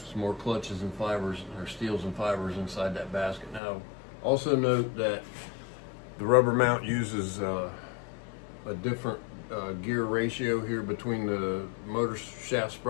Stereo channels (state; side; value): drops out; right; at 3.6 s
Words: some more clutches and fibers, or steels and fibers inside that basket. Now also note that the rubber mount uses a different gear ratio here between the motor shaft